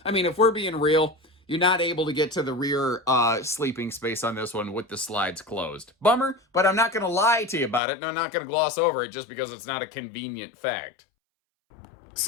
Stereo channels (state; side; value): drops out; right; at 7.8 s